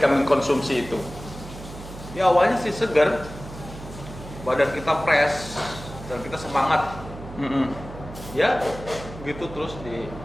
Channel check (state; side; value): noise; right; hum, 13 dB below the sound